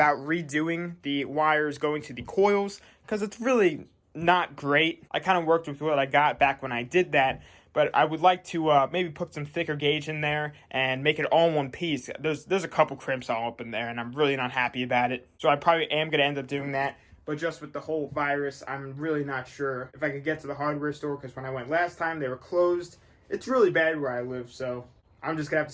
redoing the wires going to the coils, because it's really not great. I kind of worked with what I got back when I did that, but I would like to maybe put some thicker gauge in there and make it all in one piece. There's a couple crimps all up in there, and I'm really not happy about it. So I probably am going to end up doing that. But just with the whole virus, I'm really not sure if I could get to the hardware store, because when I went last time, they were closed. It's really bad where I live, so I'm just going to have to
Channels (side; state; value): both; identical; correlation 1.00